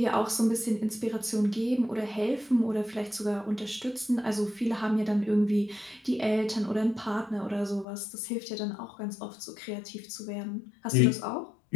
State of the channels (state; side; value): drops out; right; at 7.9 s